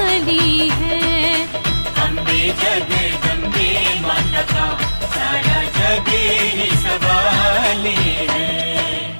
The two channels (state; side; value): inverted; both; correlation -1.00